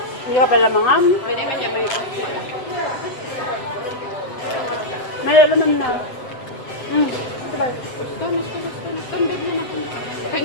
Hindi ka pala mangam. Pwede man niya may wala. May laman na. Sabay. Basta. Tundod mo na kanya.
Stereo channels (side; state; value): right; late; 8.0 ms